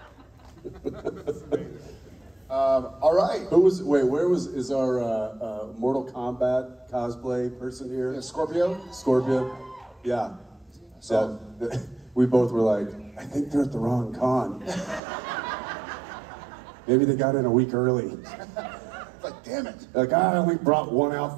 All right. Is our Mortal Kombat cosplay person here? Yeah, Scorpio? Scorpio? Yeah. So we both were like, I think they're at the wrong con. Maybe they got in a week early. Like, damn it. Like, I only brought 1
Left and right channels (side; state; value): left; drops out; at 15.0 s